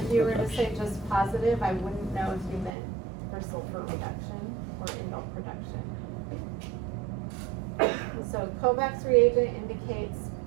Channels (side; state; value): left; drops out; at 2.7 s